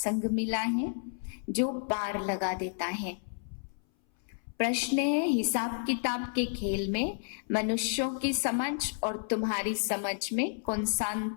मिला है जो पार लगा देता है। प्रश्न है हिसाब किताब के खेल में मनुष्यों की समझ और तुम्हारी समझ में कौन सा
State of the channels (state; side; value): silent; right; 57 dB below the other